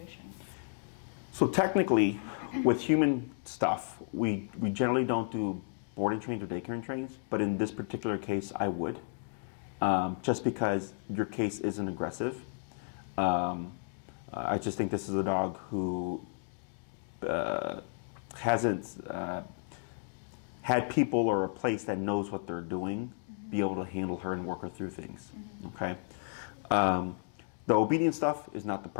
So technically, with human stuff, we generally don't do boarding trains or daycare trains, but in this particular case, I would, just because your case isn't aggressive. I just think this is a dog who hasn't had people or a place that knows what they're doing be able to handle her and work her through things. Okay, the obedience stuff is not the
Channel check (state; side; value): silent; right; digital silence